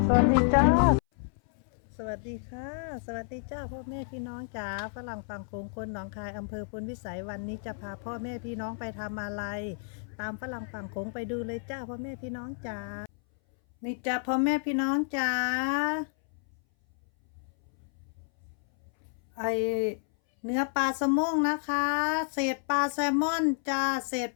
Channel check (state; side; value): silent; right; 58 dB below the other